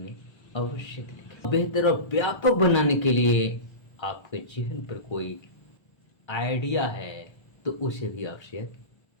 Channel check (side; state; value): right; late; 1.3 ms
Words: अवश्य लिखें। बेहतर और व्यापक बनाने के लिए आपके जहन पर कोई आइडिया है तो उसे भी आप शेयर